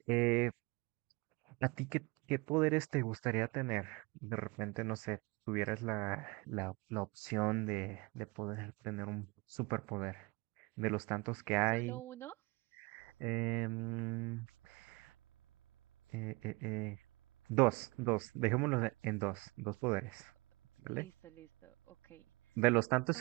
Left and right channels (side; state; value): left; quieter; 25.7 dB